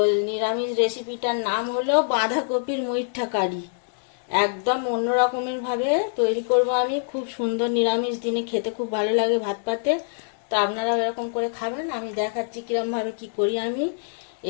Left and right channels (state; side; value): silent; right; digital silence